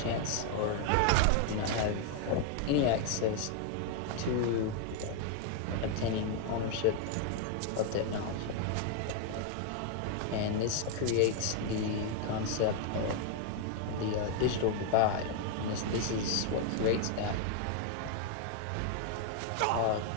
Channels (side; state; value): both; different; correlation 0.00